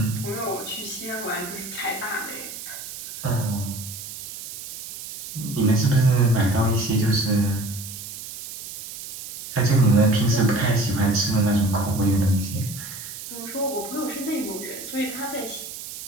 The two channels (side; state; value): right; noise; hiss, 11 dB below the sound